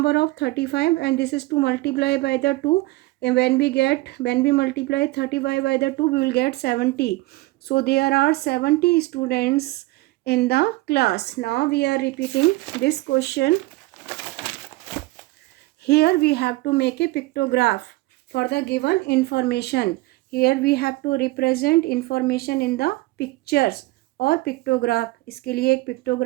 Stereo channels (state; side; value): quieter; left; 20.1 dB